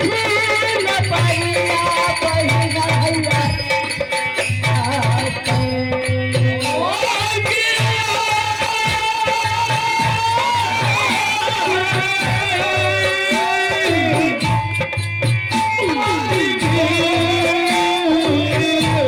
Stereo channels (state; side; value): identical; both; correlation 1.00